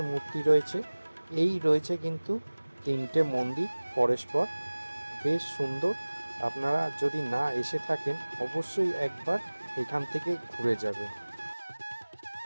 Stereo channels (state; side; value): inverted; both; correlation -1.00